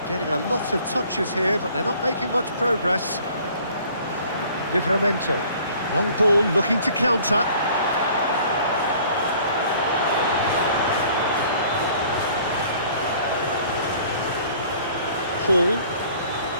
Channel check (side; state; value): both; inverted; correlation -0.54